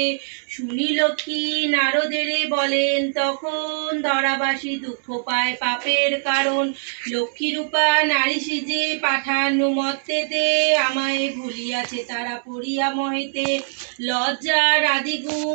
শুনি লক্ষ্মী নারদেরে বলেন তখন, ধরাবাসী দুঃখ পায় পাপের কারণ। লক্ষ্মীরূপা নারী সিজে পাঠানো মত্তেতে, আমায় ভুলিয়াছে তারা পড়িয়া মহেতে। লজ্জার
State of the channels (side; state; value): left; silent; 64 dB below the other